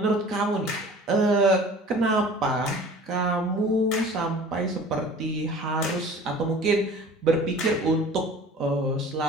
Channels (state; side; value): normal; both; correlation 0.44